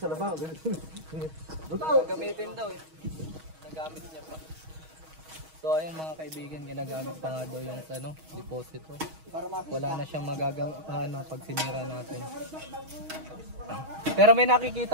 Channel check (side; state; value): left; late; 6.3 ms